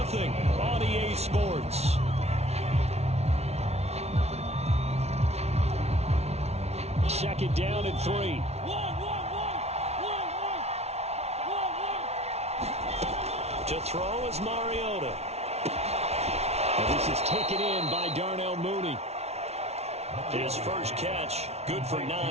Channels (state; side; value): late; left; 0.31 ms